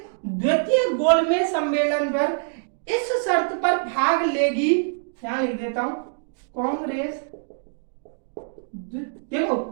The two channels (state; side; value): silent; left; digital silence